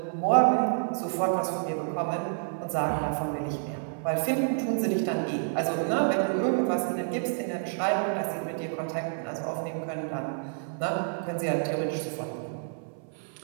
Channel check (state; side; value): silent; left; 59 dB below the other